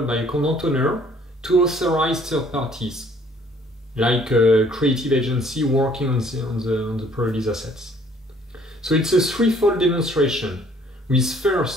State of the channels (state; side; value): normal; both; correlation 0.60